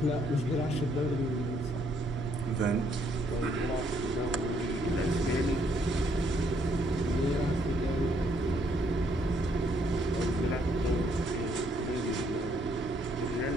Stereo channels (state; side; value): normal; both; correlation 0.70